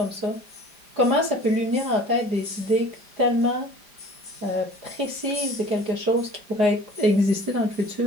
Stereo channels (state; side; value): late; left; 5.0 ms